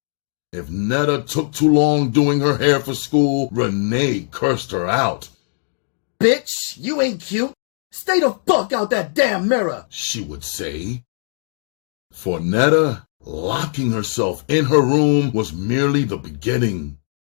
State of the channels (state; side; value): silent; right; 63 dB below the other